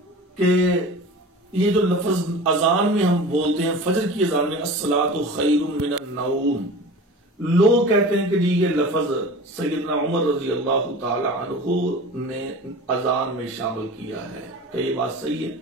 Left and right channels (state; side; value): normal; both; correlation 0.36